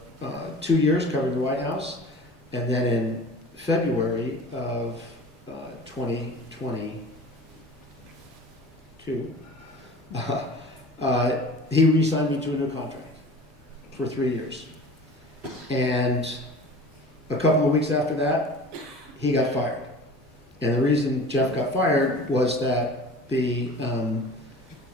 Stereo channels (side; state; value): both; normal; correlation 0.40